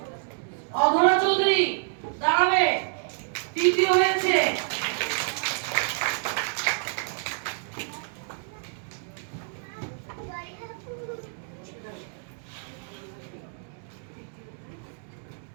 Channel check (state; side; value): silent; left; digital silence